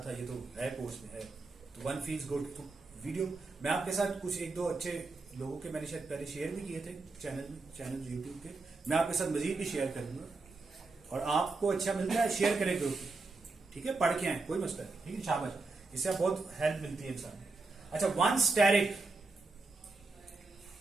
था, ये तो है कोर्स में है, तो 1 फील्स गुड। तो वीडियो मैं आपके साथ कुछ 1-2 अच्छे लोगों के मैंने शायद पहले शेयर भी किए थे चैनल यूट्यूब के, मैं आपके साथ मजीद भी शेयर करूंगा। और आपको अच्छा मिलता है शेयर करें ग्रुप, ठीक है? पढ़ के आए, कोई मसला नहीं, ठीक है? शाबाश, इससे बहुत हेल्प मिलती है इंसान। अच्छा, 1 स्टेरिक,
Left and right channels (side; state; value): left; quieter; 3.6 dB